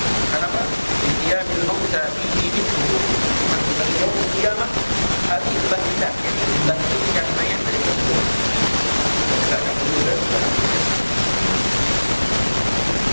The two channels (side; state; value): both; inverted; correlation -1.00